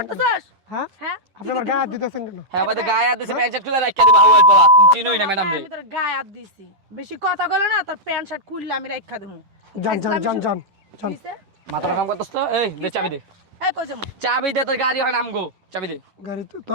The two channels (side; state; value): left; late; 10 ms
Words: করতেছস? হ্যাঁ হ্যাঁ আপনি আমার গায়ে হাত দিতেছেন কেন? হ্যাঁ আমাদের গায়ে হাত দিছে, প্যান্ট শার্ট খুলে রাখিয়ে দিবা হাওয়ায় পলা। তুমি চিনোই না ম্যাডাম রে। আমি তোর গায়ে হাত দিছি, বেশি কথা কইলে না তোর প্যান্ট শার্ট খুললে আমি রাখা দেবো। যান যান যান যান যান। মাথাটা কাম করতেছ তো? এই দে চাবি দে, এই কই যামু? চাবি দে, তোর গাড়ি হয় আমগো, চাবি দে। গাড়ি তো